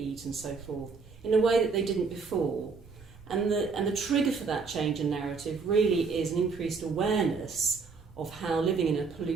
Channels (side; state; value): left; quieter; 4.8 dB